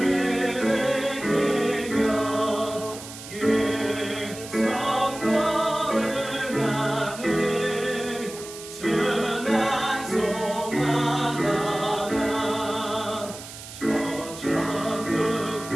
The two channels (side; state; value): right; noise; hiss, 13 dB below the sound